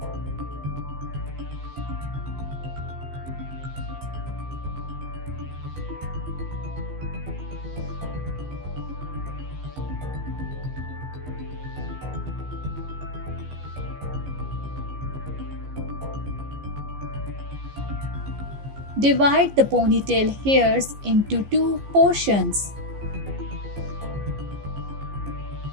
Divide the ponytail hairs into two portions.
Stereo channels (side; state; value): left; late; 15 ms